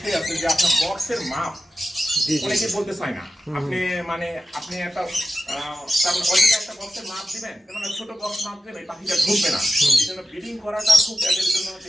আছে যে আপনার বক্সের মাপ অনেকে বলতে চায় না। আপনি একটা অযথা একটা বক্সের মাপ দিবেন, যেমন ছোট বক্স মাপ দিবেন, এই পাখিটা ঢুকবে না। এই জন্য ব্রিডিং করাটা খুব এদের জন্য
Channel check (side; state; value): both; normal; correlation 0.93